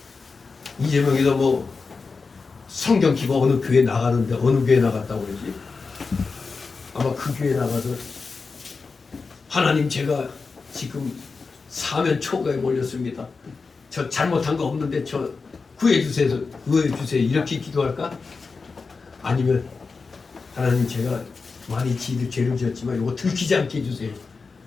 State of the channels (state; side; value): quieter; right; 4.5 dB